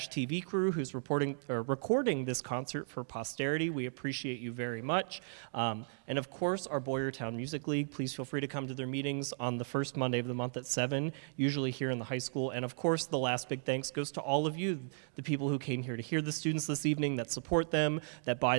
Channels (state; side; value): silent; left; digital silence